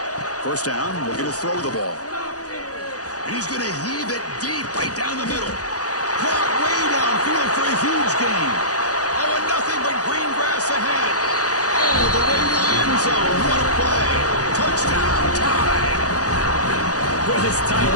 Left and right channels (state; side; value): late; right; 0.67 ms